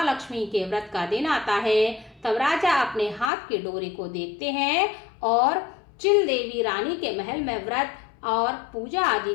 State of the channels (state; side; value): drops out; right; at 3.3 s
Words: के व्रत का दिन आता है तब राजा अपने हाथ के डोरे को देखते हैं और चिल देवी रानी के महल में व्रत और पूजा आदि